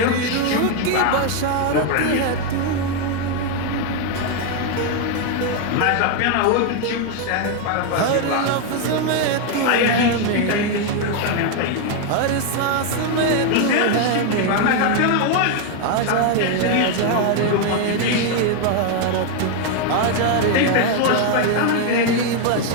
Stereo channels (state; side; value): different; both; correlation 0.01